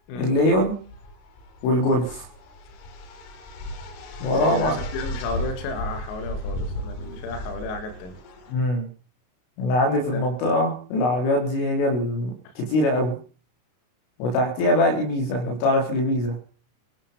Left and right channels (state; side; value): late; right; 32 ms